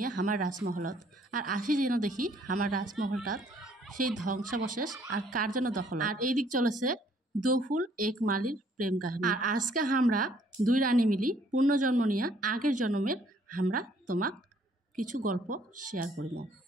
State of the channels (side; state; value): both; normal; correlation 0.63